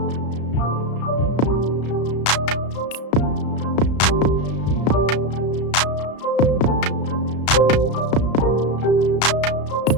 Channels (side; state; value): right; late; 34 ms